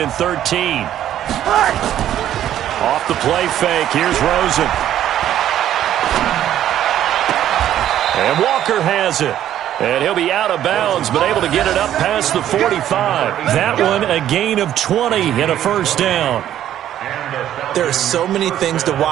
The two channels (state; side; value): quieter; left; 11.5 dB